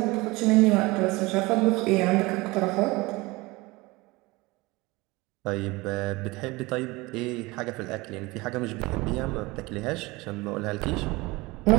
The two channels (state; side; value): quieter; left; 22.6 dB